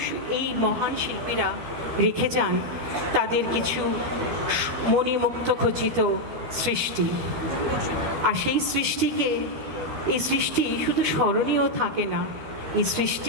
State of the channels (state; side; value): late; left; 12 ms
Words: এই মহান শিল্পীরা রেখে যান তাদের কিছু মণিমুক্ত খচিত সৃষ্টি। আর সেই এই সৃষ্টি শুধু স্মরণীয় থাকে না, এই